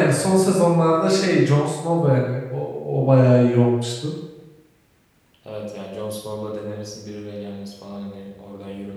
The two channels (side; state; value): both; identical; correlation 1.00